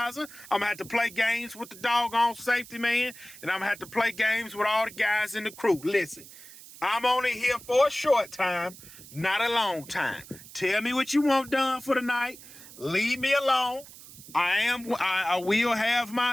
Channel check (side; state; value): right; noise; hiss, 18 dB below the sound